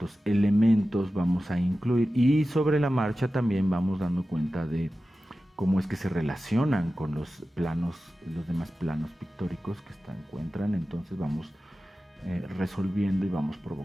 elementos vamos a incluir, y sobre la marcha también vamos dando cuenta de cómo es que se relacionan con los planos, los demás planos pictóricos que se encuentran. Entonces vamos resolviendo y vamos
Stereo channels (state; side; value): normal; both; correlation 0.94